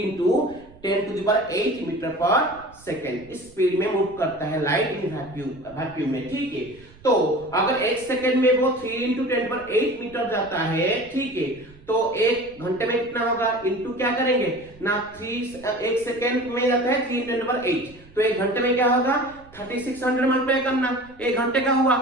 × 10⁸ मीटर पर सेकंड इस स्पीड में मूव करता है लाइट इन वैक्यूम में। ठीक है, तो अगर एक सेकंड में वो 3 × 10⁸ मीटर जाता है, ठीक है, तो एक घंटे में कितना होगा इनटू क्या करेंगे ना 3 एक सेकंड में जाता है 3 × 10⁸, तो एक घंटे में क्या होगा 3600 मल्टीप्लाई करना। एक घंटे का हुआ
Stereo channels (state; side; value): noise; right; rumble, 24 dB below the sound